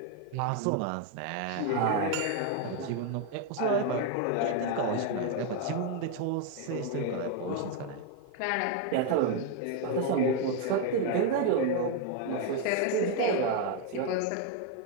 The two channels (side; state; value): both; different; correlation 0.01